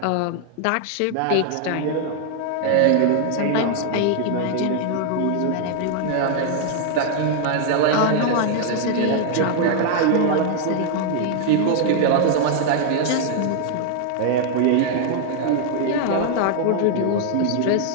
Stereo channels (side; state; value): both; different; correlation 0.00